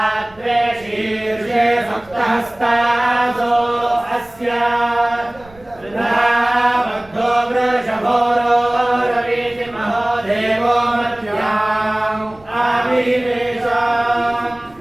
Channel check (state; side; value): noise; right; rumble, 25 dB below the sound